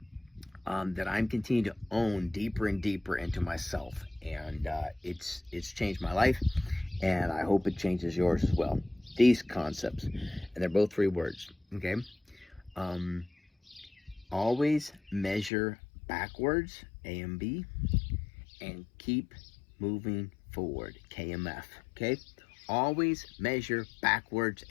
that I'm continuing to own deeper and deeper into myself. And it's changed my life, and I hope it changes yours as well. These concepts, and they're both 3 words, okay? Always measure backwards, AMB, and keep moving forward, KMF, okay? Always measure backwards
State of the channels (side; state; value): right; drops out; at 15.5 s